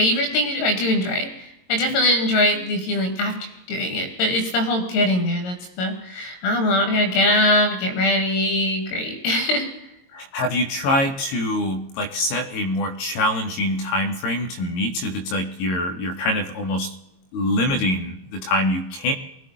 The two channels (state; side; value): late; right; 22 ms